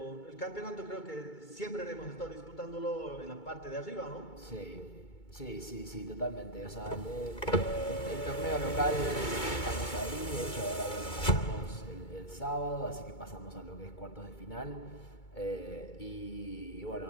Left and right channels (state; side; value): late; right; 2.2 ms